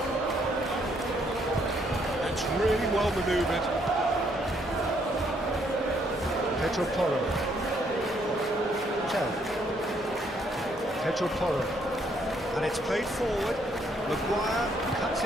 Really well manoeuvred. Pedro Porro. Tell. Pedro Porro. And it's played forward. Maguire cuts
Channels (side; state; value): both; normal; correlation 0.70